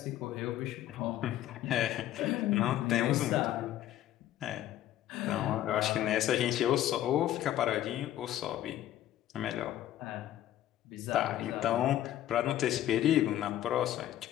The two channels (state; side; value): quieter; right; 12.7 dB